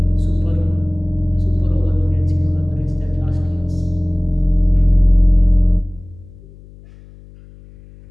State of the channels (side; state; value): left; noise; hum, 22 dB below the sound